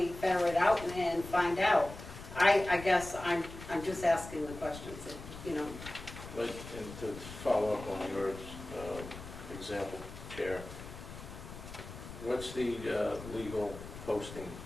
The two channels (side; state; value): left; noise; rumble, 13 dB below the sound